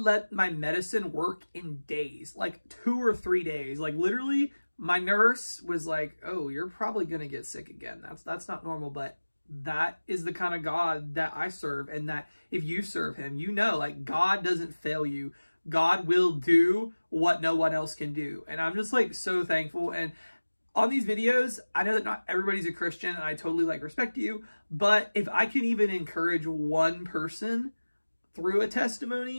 my medicine work in days, 2 or 3 days. Literally, my nurse was oh, you're probably going to get sick again. That's not normal, but that is the kind of God that I serve. And that if you serve him, you know, God doesn't fail you. God will do what no one else can do. And I'm just so thankful. And on these videos, I know that not everybody's a Christian, and I totally respect you. But if I can even encourage one person through a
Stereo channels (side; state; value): both; inverted; correlation -1.00